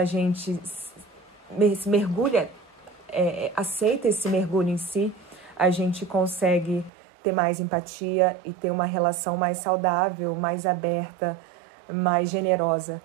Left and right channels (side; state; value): left; drops out; at 6.9 s